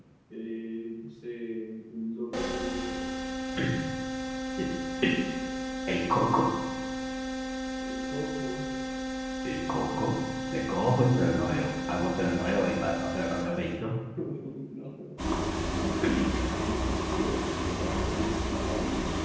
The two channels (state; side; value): identical; both; correlation 1.00